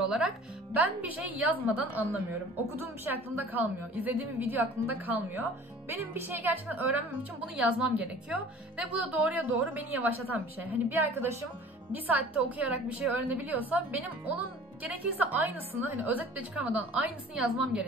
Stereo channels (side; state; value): both; normal; correlation 0.46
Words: olarak. Ben bir şey yazmadan anlamıyorum. Okuduğum bir şey aklımda kalmıyor. İzlediğim bir video aklımda kalmıyor. Benim bir şeyi gerçekten öğrenmem için bunu yazmam gerekiyor. Ve bu da doğruya doğru beni yavaşlatan bir şey. Hani bir arkadaşım bir saatte okuyarak bir şey öğrenebiliyorsa benim onun gerekirse aynısını, hani özet bile çıkarmadan aynısını yazmam